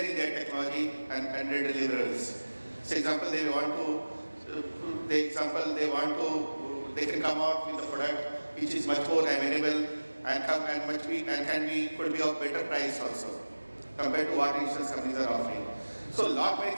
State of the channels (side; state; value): both; inverted; correlation -1.00